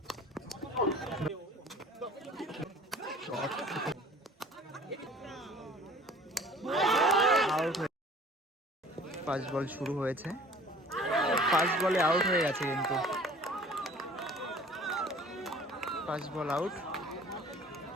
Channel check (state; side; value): normal; both; correlation 0.48